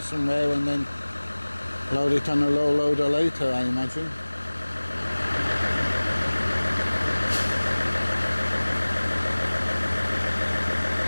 somewhere and then load it on a low loader later, I imagine.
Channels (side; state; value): both; inverted; correlation -1.00